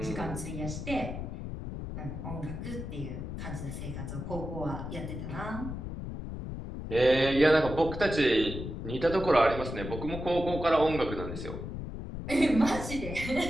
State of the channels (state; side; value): noise; left; rumble, 7 dB below the sound